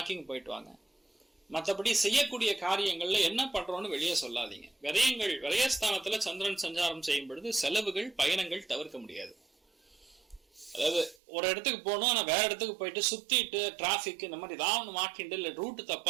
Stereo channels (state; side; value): drops out; left; at 11.2 s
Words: போயிட்டு வாங்க. மற்றபடி செய்யக்கூடிய காரியங்கள்ல என்ன பண்றோம்னு வெளியே சொல்லாதீங்க. விரயங்கள் விரயஸ்தானத்துல சந்திரன் சஞ்சாரம் செய்யும் பொழுது செலவுகள் பயணங்கள் தவிர்க்க முடியாது. அதாவது ஒரு இடத்துக்கு போகணும், ஆனா வேற இடத்துக்கு போயிட்டு சுத்திட்டு டிராபிக் இந்த மாதிரி ஏதாவது மாட்டிண்டு இல்லை ரூட்டு